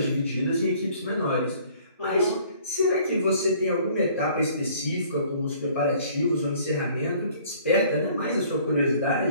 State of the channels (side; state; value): both; inverted; correlation -0.56